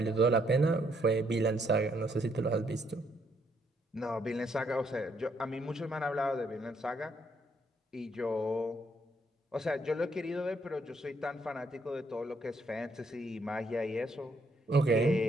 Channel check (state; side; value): normal; both; correlation 0.72